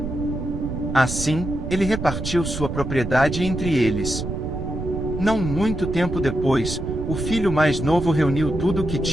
Assim, ele repartiu sua propriedade entre eles. Não muito tempo depois, o filho mais novo reuniu tudo o que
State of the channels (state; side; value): noise; right; rumble, 6 dB below the sound